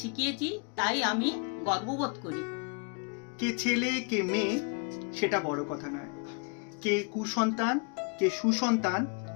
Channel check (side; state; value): right; quieter; 36.0 dB